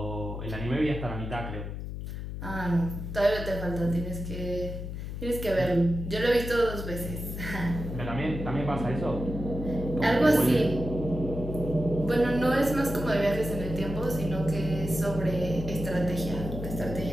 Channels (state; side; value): noise; left; hum, 7 dB below the sound